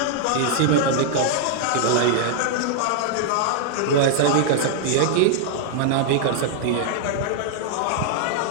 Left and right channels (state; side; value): different; both; correlation -0.01